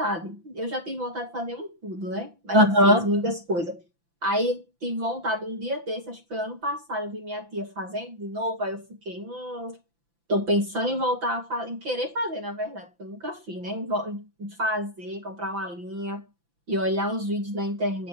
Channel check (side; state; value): left; late; 5.9 ms